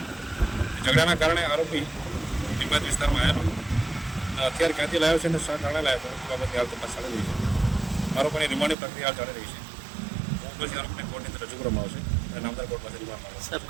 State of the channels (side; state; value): left; drops out; at 8.8 s